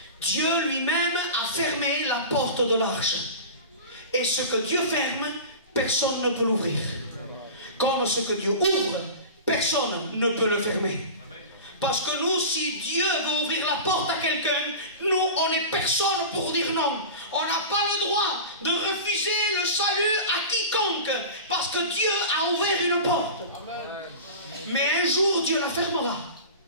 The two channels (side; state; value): both; inverted; correlation -0.32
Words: Dieu lui-même a fermé la porte de l'arche. Et ce que Dieu ferme, personne ne peut l'ouvrir. Comme ce que Dieu ouvre, personne ne peut le fermer. Parce que nous, si Dieu veut ouvrir la porte à quelqu'un, nous, on n'est personne pour dire non. On n'a pas le droit de refuser le salut à quiconque, parce que Dieu a ouvert une porte. Mais un jour, Dieu la fermera.